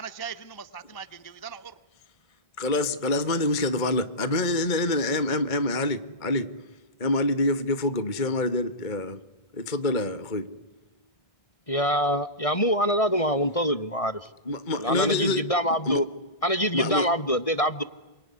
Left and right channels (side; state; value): right; late; 1.6 ms